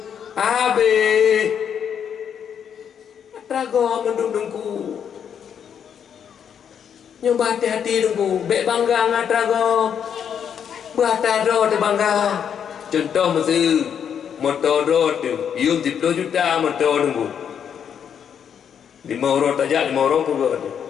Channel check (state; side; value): quieter; right; 8.1 dB